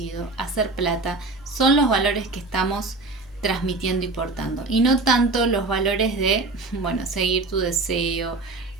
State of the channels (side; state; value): left; quieter; 3.5 dB